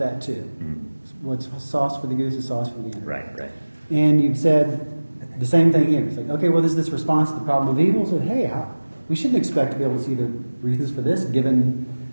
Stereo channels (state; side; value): inverted; both; correlation -1.00